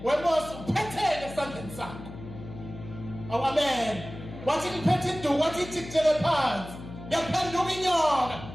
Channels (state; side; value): noise; left; hum, 13 dB below the sound